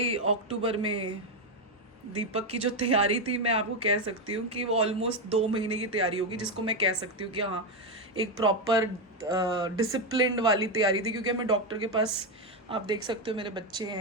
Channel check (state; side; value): normal; both; correlation 0.07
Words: अक्टूबर में दीपक की जो तैयारी थी, मैं आपको कह सकती हूँ कि वो ऑलमोस्ट 2 महीने की तैयारी होगी, जिसको मैं कह सकती हूँ कि हाँ एक प्रॉपर डिसिप्लिन्ड वाली तैयारी थी। क्योंकि मैं डॉक्टर के पास, आप देख सकते हो मेरे बच्चे